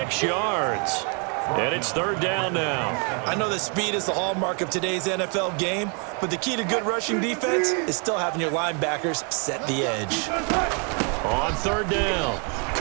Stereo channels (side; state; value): left; quieter; 37.4 dB